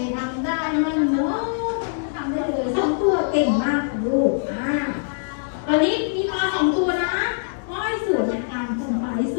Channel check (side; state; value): right; silent; digital silence